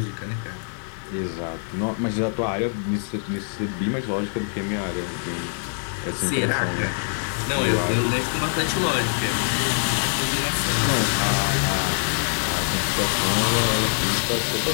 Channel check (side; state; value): right; silent; 58 dB below the other